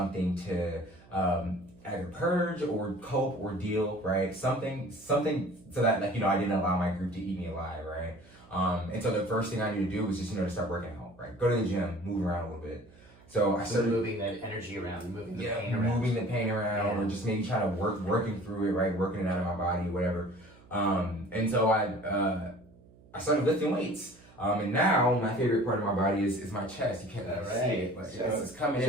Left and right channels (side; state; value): right; noise; hum, 25 dB below the sound